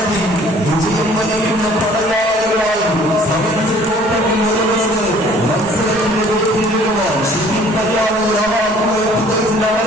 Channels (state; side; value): normal; both; correlation 0.54